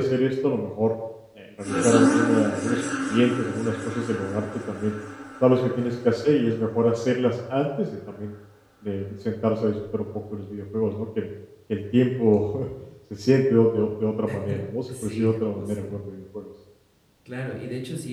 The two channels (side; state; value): both; identical; correlation 1.00